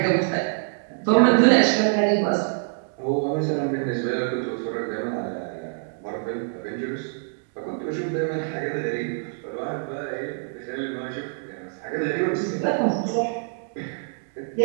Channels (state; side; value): silent; left; digital silence